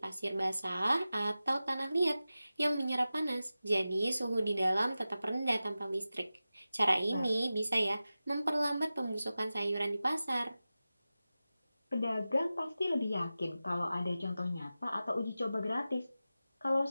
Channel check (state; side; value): inverted; both; correlation -0.95